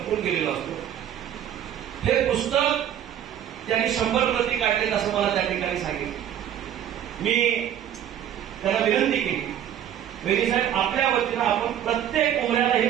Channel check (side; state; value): left; quieter; 10.4 dB